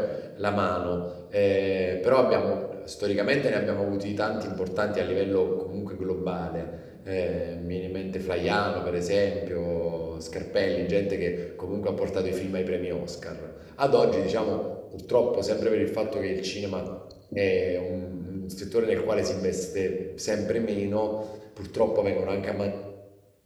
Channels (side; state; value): both; identical; correlation 1.00